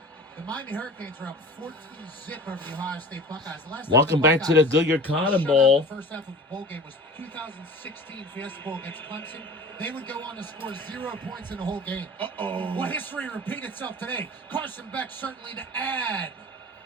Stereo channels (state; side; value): normal; both; correlation 0.39